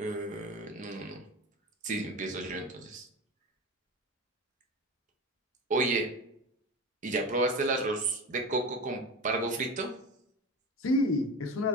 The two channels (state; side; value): normal; both; correlation 0.27